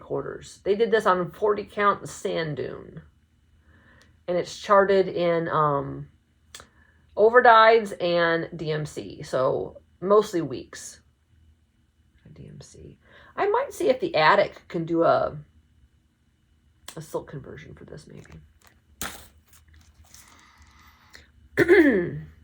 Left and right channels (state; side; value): identical; both; correlation 1.00